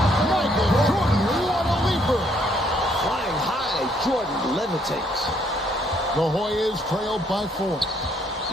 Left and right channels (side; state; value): both; normal; correlation 0.68